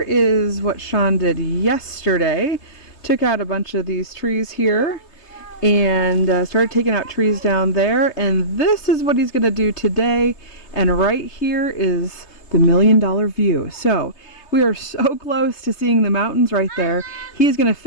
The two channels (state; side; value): late; right; 3.3 ms